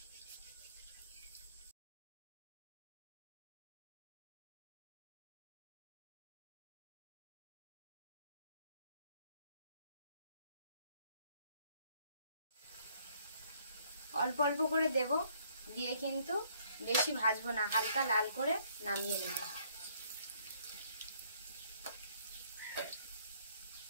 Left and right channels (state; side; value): inverted; both; correlation -0.65